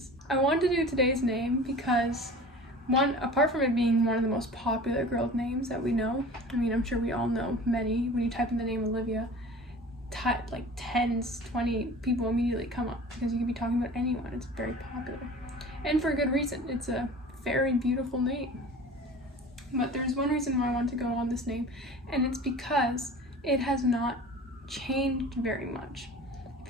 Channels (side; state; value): both; normal; correlation 0.40